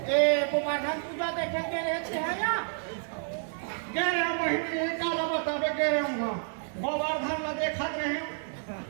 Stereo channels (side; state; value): left; silent; digital silence